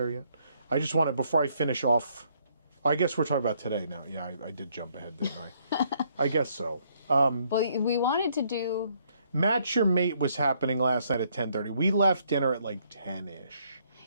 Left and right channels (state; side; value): inverted; both; correlation -0.69